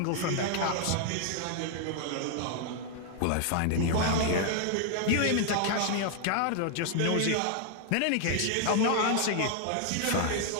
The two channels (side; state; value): both; different; correlation 0.00